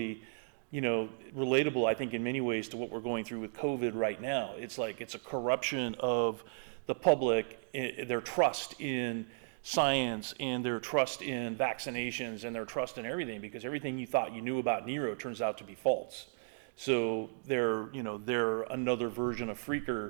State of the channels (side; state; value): left; silent; digital silence